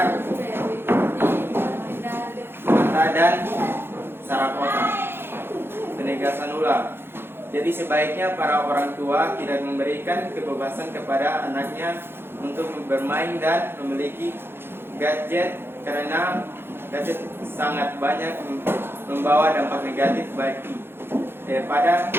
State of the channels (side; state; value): left; late; 0.11 ms